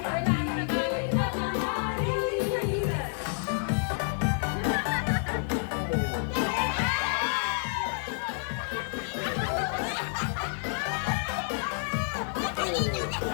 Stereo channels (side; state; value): right; silent; 58 dB below the other